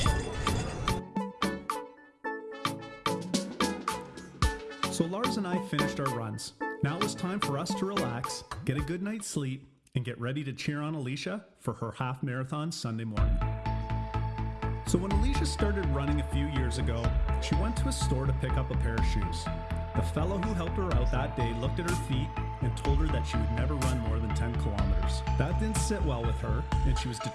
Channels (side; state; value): both; identical; correlation 1.00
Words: So Lars and I finished our runs. Now it was time for us to relax, get a good night's sleep, and get ready to cheer on Alicia for her half marathon Sunday morning. So when Alicia started running a few years ago, she went to a store to pick up a pair of shoes. The fellow who helped her out that day looked at her feet and told her that she would never run more than 10 kilometers. That didn't sit well with her, and she was